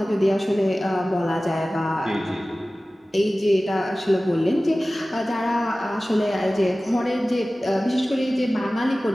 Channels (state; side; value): normal; both; correlation 0.97